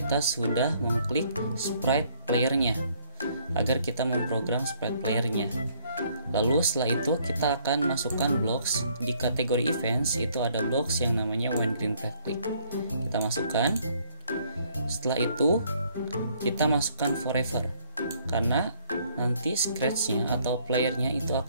sudah mengklik sprite playernya agar kita memprogram sprite playernya. Lalu setelah itu kita akan masukkan blocks di kategori events. Itu ada blocks yang namanya when green flag click. Kita masukkan. Setelah itu kita masukkan forever, karena nanti scratch-nya atau playernya itu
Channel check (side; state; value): both; inverted; correlation -0.64